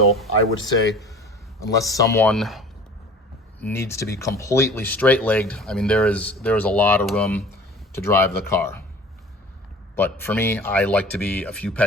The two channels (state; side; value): normal; both; correlation 0.44